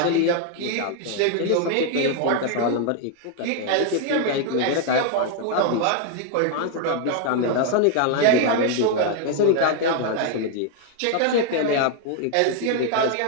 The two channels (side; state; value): both; different; correlation 0.00